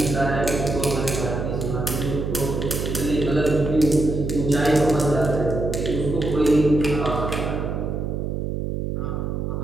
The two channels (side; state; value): right; noise; hum, 2 dB below the sound